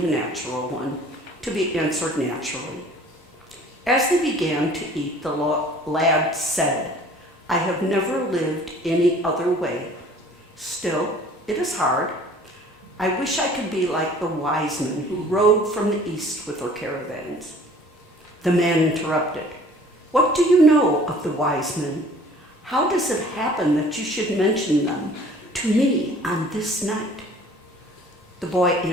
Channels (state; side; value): normal; both; correlation 0.51